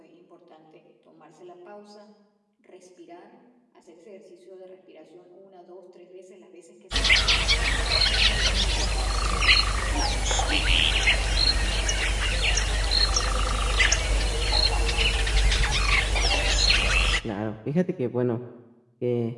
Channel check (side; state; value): both; identical; correlation 1.00